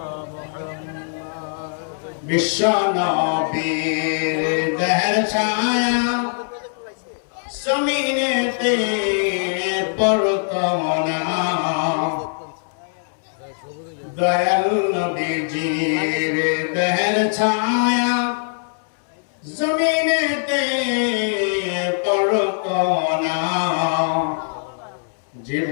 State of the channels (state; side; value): silent; right; 65 dB below the other